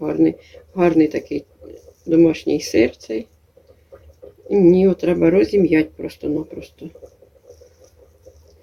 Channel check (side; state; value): both; identical; correlation 1.00